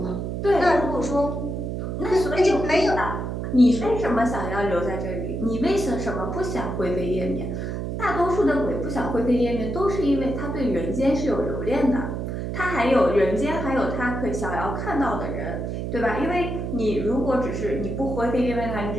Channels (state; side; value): noise; right; hum, 4 dB below the sound